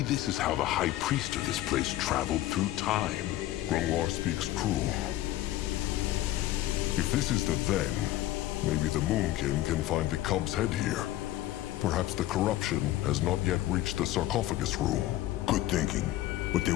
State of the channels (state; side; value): quieter; right; 14.9 dB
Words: this is how the High Priest of this place traveled through time. Grungwar speaks true. If this is the then, maybe the Moonkin can find the cub's head here. Perhaps the corruption has not yet reached the sarcophagus room. Good thinking. But they